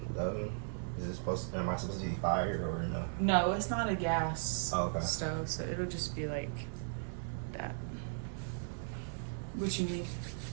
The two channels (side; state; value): left; silent; digital silence